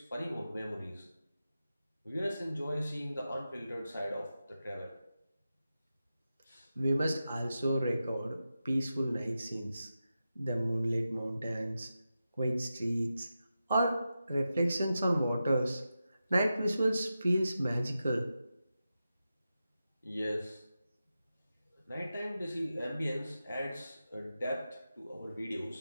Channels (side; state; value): both; inverted; correlation -0.91